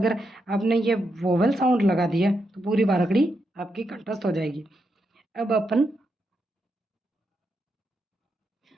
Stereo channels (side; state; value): both; normal; correlation 0.83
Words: आपने ये वोवल साउंड लगा दिया तो पूरी बारहगढ़ी आपकी कंठस्थ हो जाएगी। अब अपन